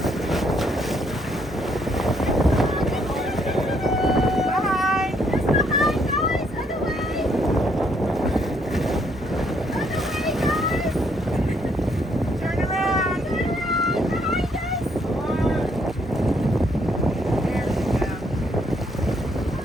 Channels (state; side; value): normal; both; correlation 0.71